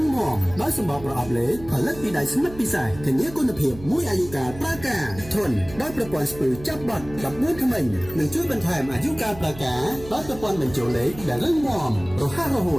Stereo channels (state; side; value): noise; right; hum, 16 dB below the sound